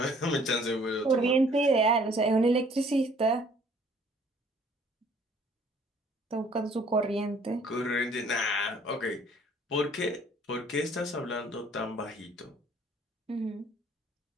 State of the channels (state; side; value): normal; both; correlation 0.58